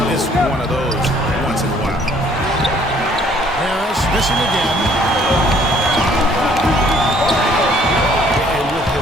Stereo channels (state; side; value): normal; both; correlation 0.60